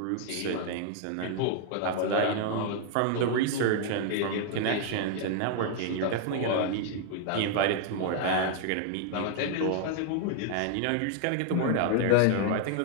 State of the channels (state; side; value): different; both; correlation 0.00